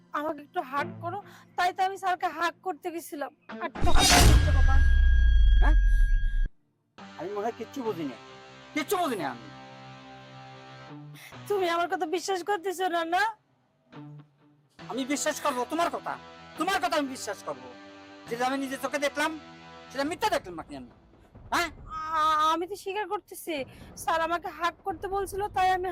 আমাকে একটু হাগ করো, তাই তো আমি স্যারকে হাগ করতে গেছিলাম। আর তখন মিথ্যে কথা। হ্যাঁ, আমি মনে হয় কিচ্ছু বুঝিনি, কিচ্ছু বুঝিনি আমি। তুমি আমার কথা বিশ্বাস করতেছো না? না আমি বিশ্বাস করবো তোমার কথা? তোমার কথা আমি বিশ্বাস করবো? যেটা আমি নিজের চোখে দেখলাম সেটা মিথ্যা দেখলাম নাকি আমি? হ্যাঁ, আমি তো স্বীকার করতেছি, স্যার আমাকে হাগ করতে বলছিল তাই আমি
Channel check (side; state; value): both; identical; correlation 1.00